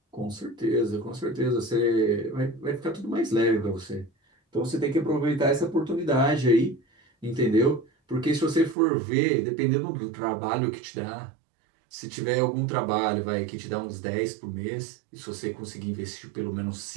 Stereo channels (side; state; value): left; drops out; at 8.8 s